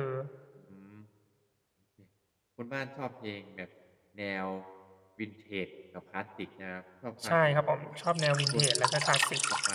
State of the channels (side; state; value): both; identical; correlation 1.00